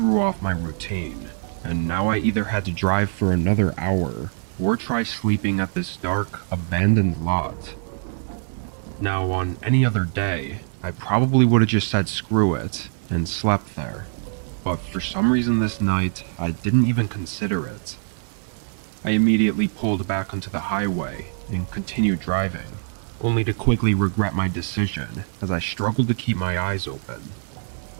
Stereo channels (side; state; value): left; silent; digital silence